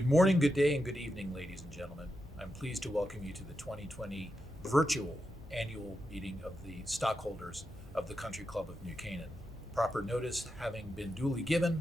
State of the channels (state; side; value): normal; both; correlation 0.87